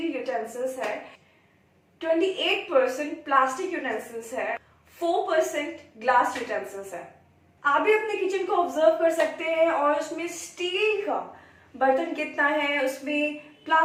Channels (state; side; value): identical; both; correlation 1.00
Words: यूटेंसिल्स है, 28% प्लास्टिक यूटेंसिल्स है, 4% ग्लास यूटेंसिल्स है। आप भी अपने किचन को ऑब्जर्व कर सकते हैं और उसमें स्टील का बर्तन कितना है, उसमें